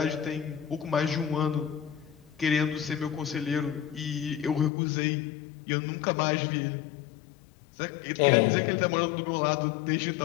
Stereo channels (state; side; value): drops out; right; at 4.7 s